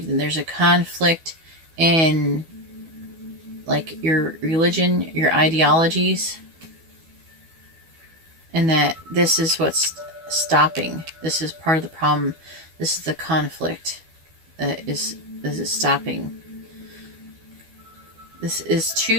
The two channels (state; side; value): late; left; 12 ms